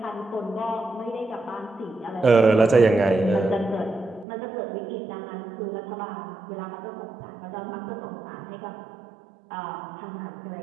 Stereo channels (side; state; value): left; drops out; at 4.2 s